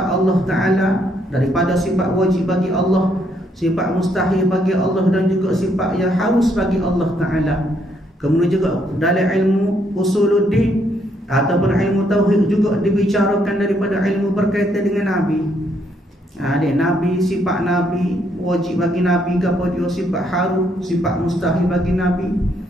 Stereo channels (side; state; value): both; normal; correlation 0.72